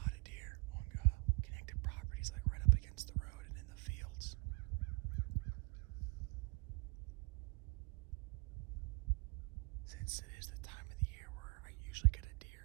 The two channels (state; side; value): quieter; left; 24.2 dB